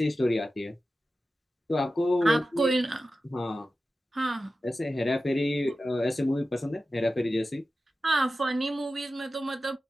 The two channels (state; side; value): normal; both; correlation 0.93